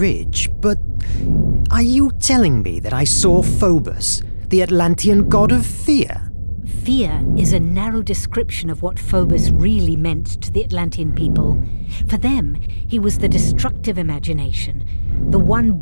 but are you telling me that I saw Phobos, the Atlantean god of fear? Fear is a narrow description of what Phobos really meant to the Atlantean people. For them, he was the destructive imagination, the one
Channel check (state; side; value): inverted; both; correlation -1.00